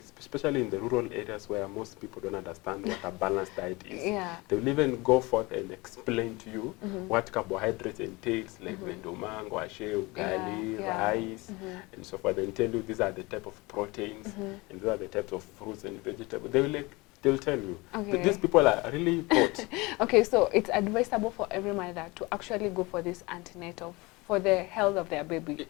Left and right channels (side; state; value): right; quieter; 24.1 dB